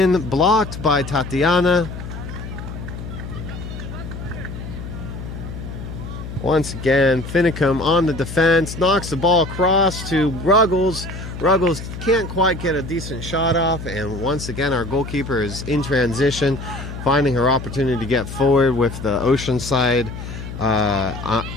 blocked by Tatiana. Once again, Finicum on the defense, knocks the ball across to Ruggles. Ruggles can't quite get a decent shot off, and once again our goalkeeper is in transition, finding her opportunity to get forward with the Oceanside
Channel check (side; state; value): left; noise; hum, 9 dB below the sound